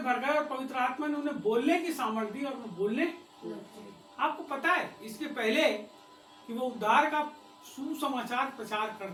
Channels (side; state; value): both; identical; correlation 1.00